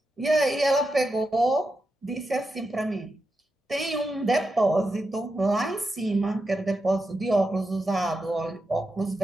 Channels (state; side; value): normal; both; correlation 0.88